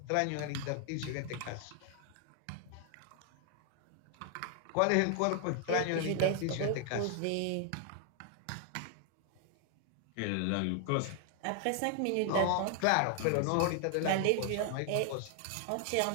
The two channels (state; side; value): different; both; correlation 0.00